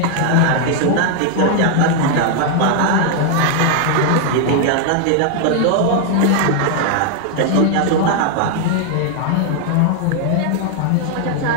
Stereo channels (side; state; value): both; different; correlation 0.00